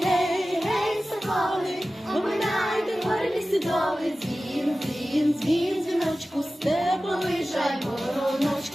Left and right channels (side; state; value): both; normal; correlation 0.95